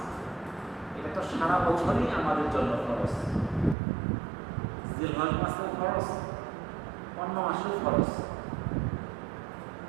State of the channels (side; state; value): left; drops out; at 3.8 s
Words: এটা তো সারা বছরই আমাদের জন্য খরচ। জিলহজ মাসেও খরচ, অন্য মাসেও খরচ।